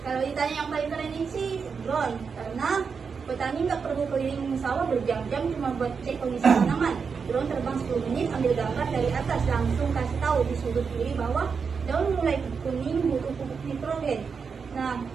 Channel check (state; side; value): quieter; left; 5.7 dB